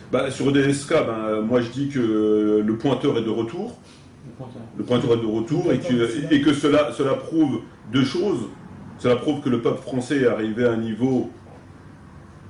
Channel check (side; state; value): both; identical; correlation 1.00